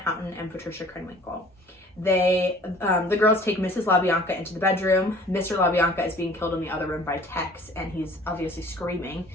Houten and Patricia Krenwinkel. The girls take Mrs. LaBianca into the bedroom. Mr. LaBianca is being killed in the other room by Tex, and he's obviously screaming.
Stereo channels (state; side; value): normal; both; correlation 0.50